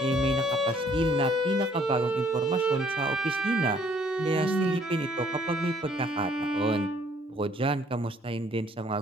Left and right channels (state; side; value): normal; both; correlation 0.62